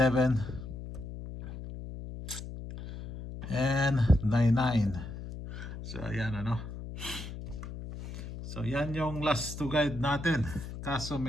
and 9-9. So ayan ano. So yan yung last to guide natin. Kaso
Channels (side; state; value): left; noise; hum, 10 dB below the sound